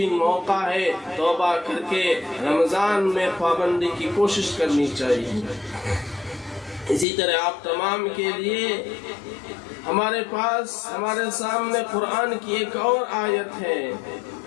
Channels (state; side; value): drops out; right; at 7.1 s